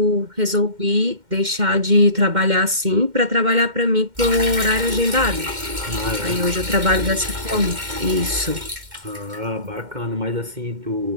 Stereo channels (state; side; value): late; left; 2.1 ms